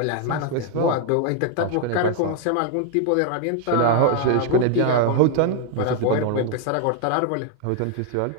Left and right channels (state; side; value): different; both; correlation 0.00